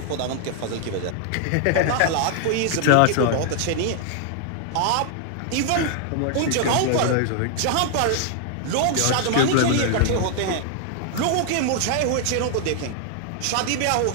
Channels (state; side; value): different; both; correlation 0.00